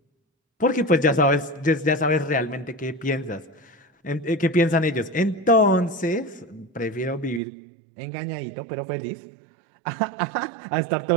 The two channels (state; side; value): drops out; left; at 7.4 s